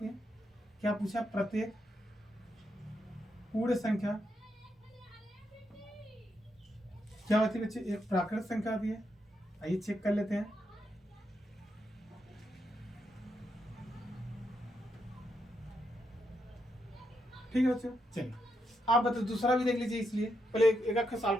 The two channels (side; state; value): both; normal; correlation 0.82